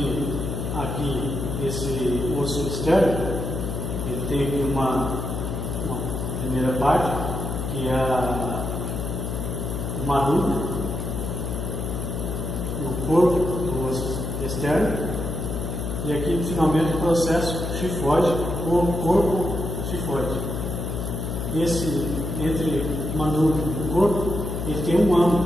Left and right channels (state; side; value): noise; left; hum, 3 dB below the sound